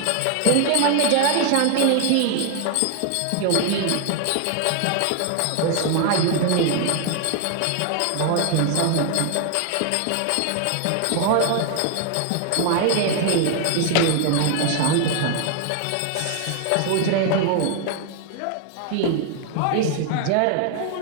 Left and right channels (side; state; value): both; different; correlation 0.00